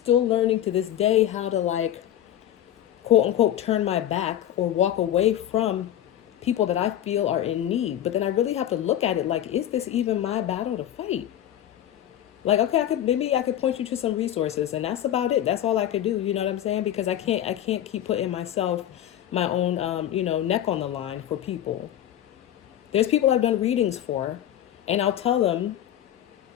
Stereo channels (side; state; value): right; quieter; 11.5 dB